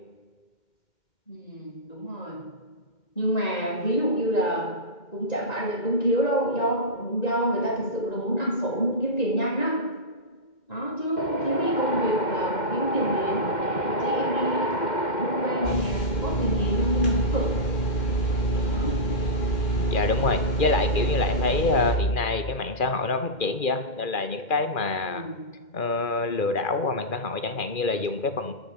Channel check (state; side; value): late; right; 2.1 ms